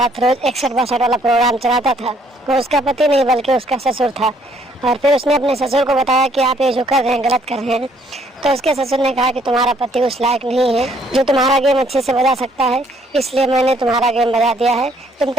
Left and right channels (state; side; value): normal; both; correlation 0.65